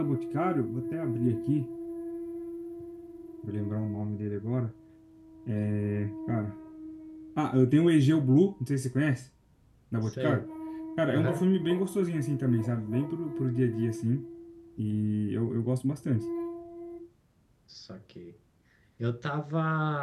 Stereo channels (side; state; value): both; identical; correlation 1.00